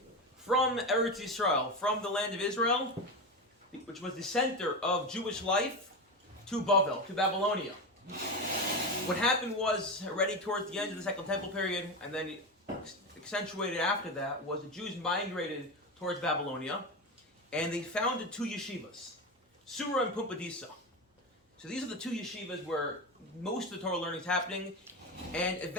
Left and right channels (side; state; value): both; normal; correlation 0.19